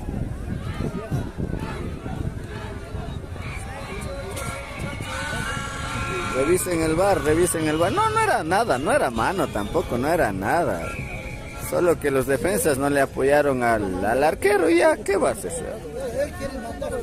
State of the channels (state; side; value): identical; both; correlation 1.00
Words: Revisen el bar, revisen el bar. No, no era nada, no era mano tampoco, no era nada. Solo que los defensas no le apoyaron al arquero y ya, ¿qué vas a hacer?